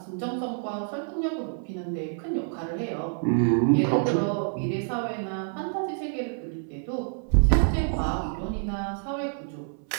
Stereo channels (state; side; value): silent; left; 60 dB below the other